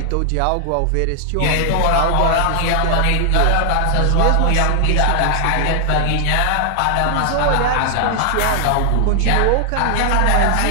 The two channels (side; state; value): both; different; correlation 0.00